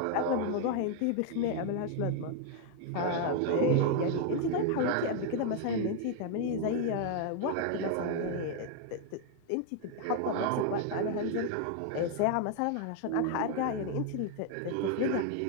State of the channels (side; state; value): both; different; correlation 0.00